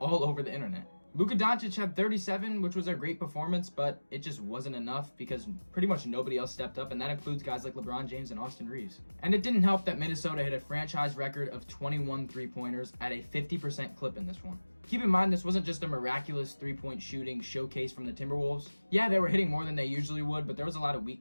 over the internet. Luka Doncic had 37, which was a great performance, but it just wasn't enough because pretty much nobody else stepped up, and that includes guys like LeBron James and Austin Reeves. And it didn't help that Minnesota hit a franchise record of 21 three-pointers at a 50% clip in this one. Keep in mind, this wasn't just a miraculous three-point shooting showcase from the Timberwolves. Yeah, they were hitting more than they usually would, but there was a lot of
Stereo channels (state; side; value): inverted; both; correlation -1.00